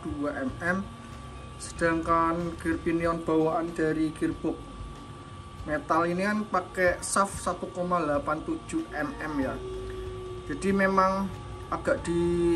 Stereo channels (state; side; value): identical; both; correlation 1.00